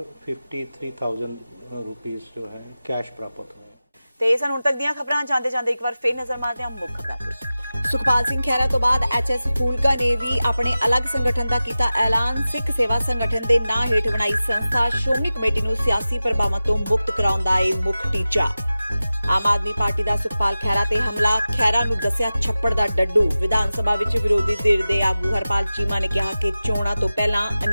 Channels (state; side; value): inverted; both; correlation -0.95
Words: रुपीस जो है कैश प्राप्त हुए। ਤੇ ਸਨ ਹੁਣ ਤੱਕ ਦੀਆਂ ਖਬਰਾਂ ਜਾਂਦੇ ਜਾਂਦੇ ਇੱਕ ਵਾਰ ਫੇਰ ਨਜ਼ਰ ਮਾਰਦੇ ਹਾਂ ਮੁੱਖ ਖਬਰਾਂ ਤੇ। ਸੁਖਪਾਲ ਸਿੰਘ ਖਹਿਰਾ ਤੋਂ ਬਾਅਦ ਐਚਐਸ ਫੂਲਕਾ ਨੇ ਵੀ ਆਪਣੇ ਅਲੱਗ ਸੰਗਠਨ ਦਾ ਕੀਤਾ ਐਲਾਨ। ਸਿੱਖ ਸੇਵਾ ਸੰਗਠਨ ਦੇ ਨਾਂ ਹੇਠ ਬਣਾਈ ਸੰਸਥਾ ਸ਼੍ਰੋਮਣੀ ਕਮੇਟੀ ਨੂੰ ਸਿਆਸੀ ਪ੍ਰਭਾਵਾਂ ਤੋਂ ਮੁਕਤ ਕਰਾਉਣ ਦਾ ਇਹ ਮੁੱਖ ਟੀਚਾ। ਆਮ ਆਦਮੀ ਪਾਰਟੀ ਦਾ ਸੁਖਪਾਲ ਖਹਿਰਾ ਤੇ ਹਮਲਾ, ਖਹਿਰਾ ਨੂੰ ਦੱਸਿਆ ਛੱਪੜ ਦਾ ਡੱਡੂ। ਵਿਧਾਨ ਸਭਾ ਵਿੱਚ ਵਿਰੋਧੀ ਧਿਰ ਦੇ ਆਗੂ ਹਰਪਾਲ ਚੀਮਾ ਨੇ ਕਿਹਾ ਕਿ ਚੋਣਾਂ ਤੋਂ ਪਹਿਲਾਂ